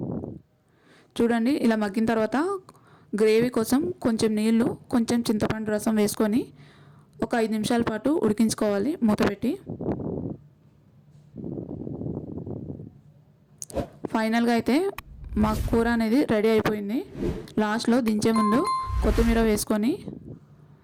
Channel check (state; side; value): identical; both; correlation 1.00